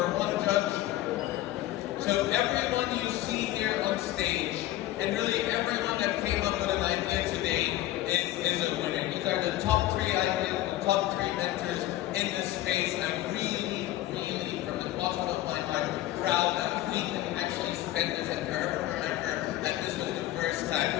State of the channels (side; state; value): right; quieter; 15.2 dB